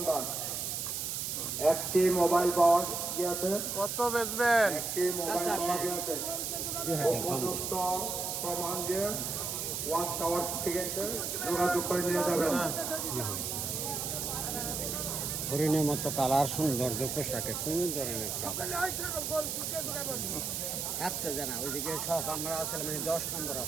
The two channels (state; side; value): noise; right; hiss, 2 dB below the sound